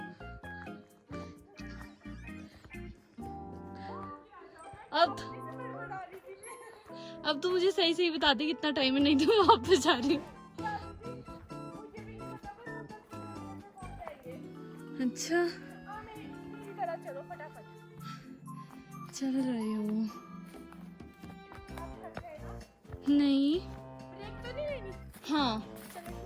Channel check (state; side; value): identical; both; correlation 1.00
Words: अब तू मुझे सही सही बता दे कितना टाइम है, नहीं तो मैं वापस जा रही हूँ। अच्छा चलो फटाफट। चल रही हूँ। नहीं ब्रेक तो नहीं लेनी। हाँ